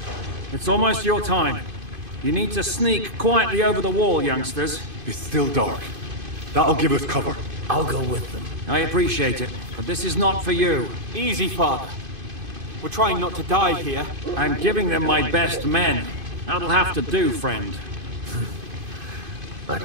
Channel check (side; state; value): left; late; 2.5 ms